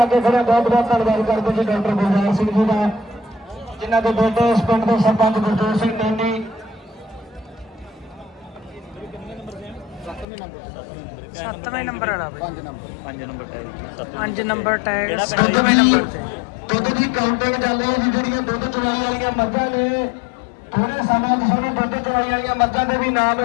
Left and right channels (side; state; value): right; drops out; at 10.2 s